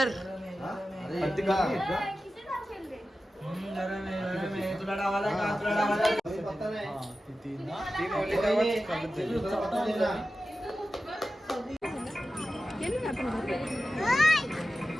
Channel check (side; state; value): both; normal; correlation 0.94